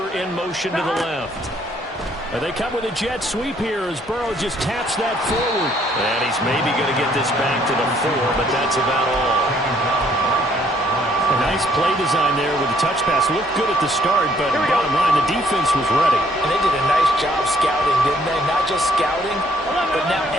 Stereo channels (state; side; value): normal; both; correlation 0.65